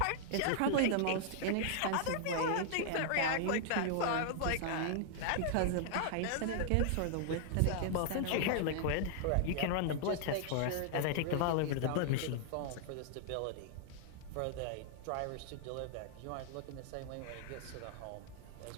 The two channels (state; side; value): different; both; correlation -0.01